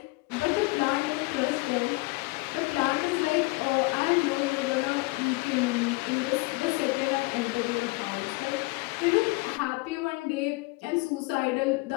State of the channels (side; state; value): right; quieter; 25.4 dB